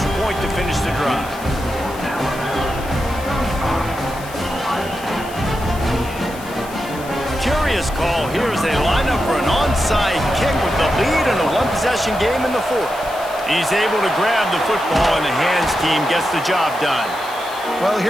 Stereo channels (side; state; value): left; noise; hiss, 17 dB below the sound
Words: point to finish the drive. Curious call here as they line up for an onside kick with the lead in a one-possession game in the 4th. He's able to grab the football, and the hands team gets the job done. Well,